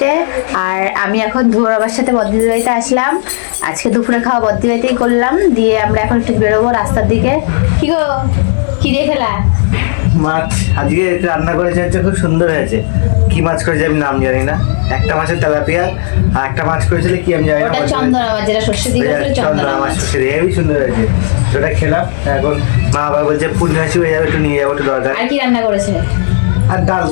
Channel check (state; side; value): silent; right; digital silence